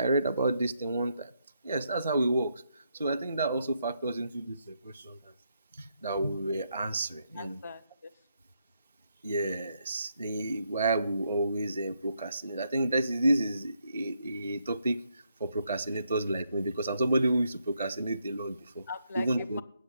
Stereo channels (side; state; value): both; inverted; correlation -0.78